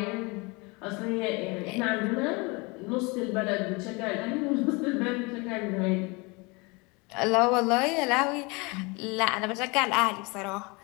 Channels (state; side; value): quieter; right; 27.7 dB